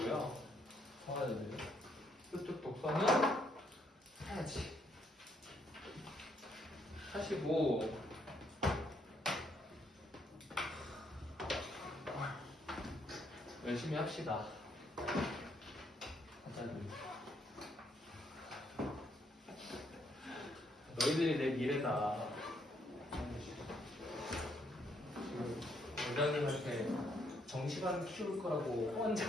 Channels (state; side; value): normal; both; correlation 0.72